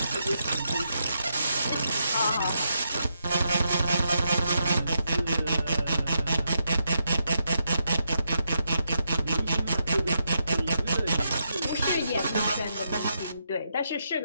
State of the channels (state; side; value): inverted; both; correlation -0.81